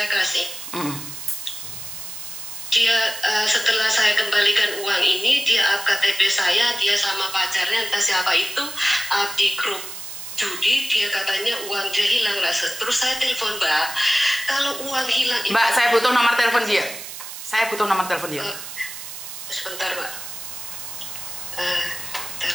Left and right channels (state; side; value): noise; right; hiss, 10 dB below the sound